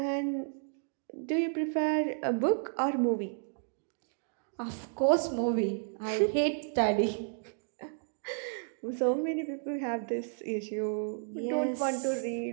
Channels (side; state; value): left; silent; digital silence